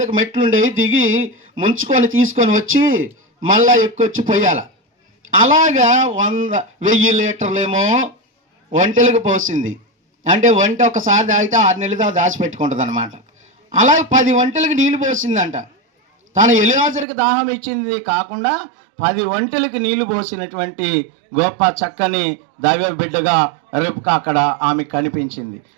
మెట్లు ఉండేవి, దిగి ముంచుకొని తీసుకొని వచ్చి మళ్ళా ఎక్కువచ్చి పోయాల. అలాగా 1000 లీటర్లేమో ఒంటెలకు పోసింది. అంటే వంట ఒకసారి తాగితే 6 నెలలు దాకా దాచిపెట్టుకుంటుంది అనమాట. అలాగే 10 ఒంటెలకు నీళ్లు పోసిందంట. తన ఎలియాజరుకి దాహం ఇచ్చింది కాకుండా 10 ఒంటెలకు నీళ్లు పోసినటువంటి గొప్ప చక్కని దైవ బిడ్డగా రిబ్కా అక్కడ ఆమె కనిపించింది.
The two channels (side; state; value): left; drops out; at 17.1 s